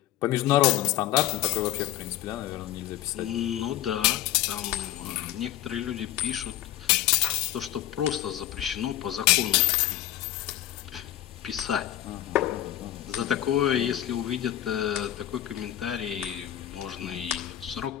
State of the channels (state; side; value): quieter; right; 13.3 dB